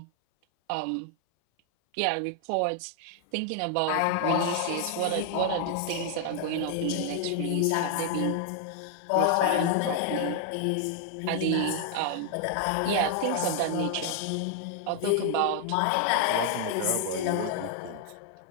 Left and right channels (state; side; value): different; both; correlation 0.00